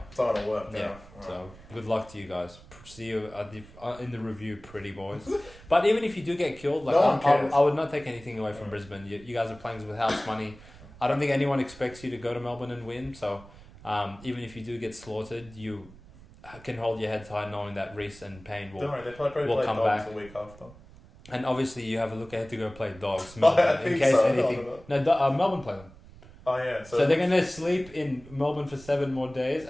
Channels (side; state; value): right; noise; rumble, 21 dB below the sound